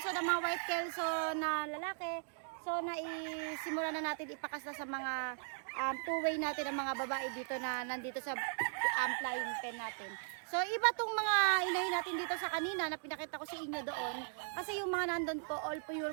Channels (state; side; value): silent; left; digital silence